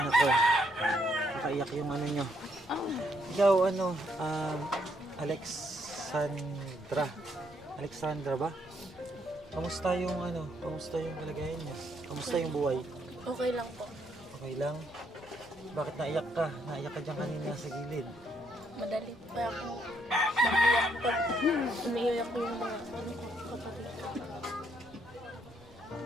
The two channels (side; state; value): both; normal; correlation 0.72